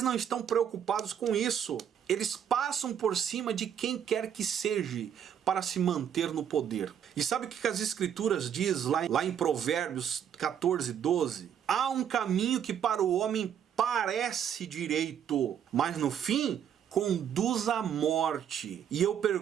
não estão preocupados com isso. Eles passam por cima de quem quer que seja para se manter no poder. E sabe o que as escrituras diz lá em Provérbios 14, 12? Há um caminho que para o homem parece direito, mas no fim conduz à morte. E eu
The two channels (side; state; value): left; quieter; 8.9 dB